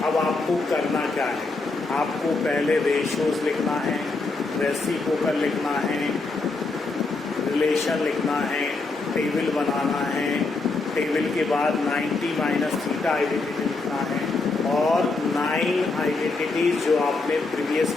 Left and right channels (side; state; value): right; quieter; 3.6 dB